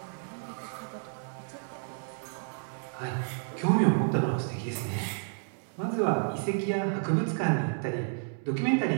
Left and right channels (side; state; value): left; silent; 57 dB below the other